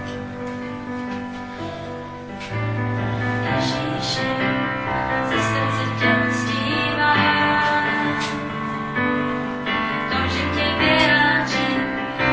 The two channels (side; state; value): both; identical; correlation 1.00